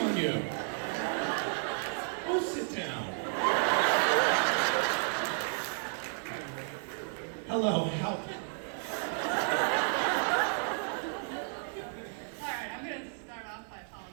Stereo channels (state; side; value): silent; left; 56 dB below the other